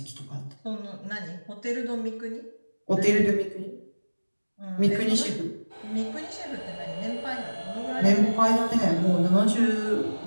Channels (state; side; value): inverted; both; correlation -1.00